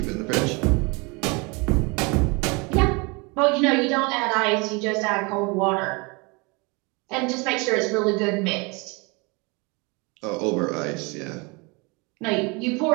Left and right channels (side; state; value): left; quieter; 28.6 dB